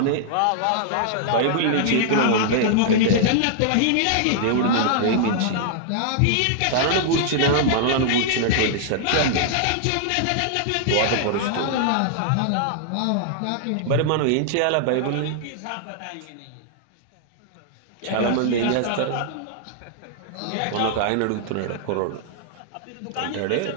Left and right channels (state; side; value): different; both; correlation -0.01